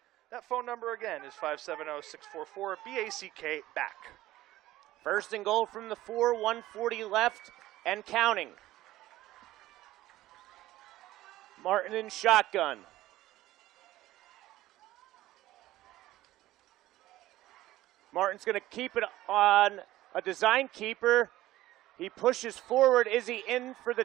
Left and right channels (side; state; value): left; quieter; 15.7 dB